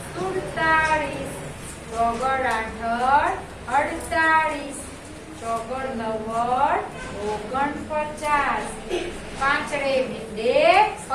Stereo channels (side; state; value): both; identical; correlation 1.00